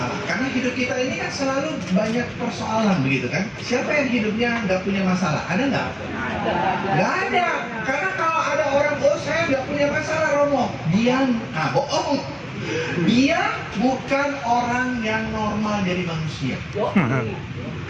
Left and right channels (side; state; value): both; identical; correlation 1.00